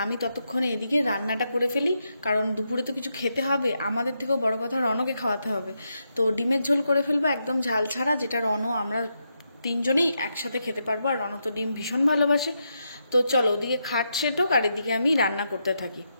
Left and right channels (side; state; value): both; inverted; correlation -0.83